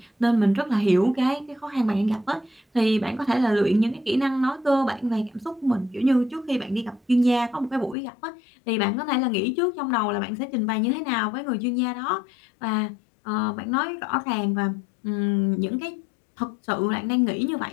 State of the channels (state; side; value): drops out; right; at 8.0 s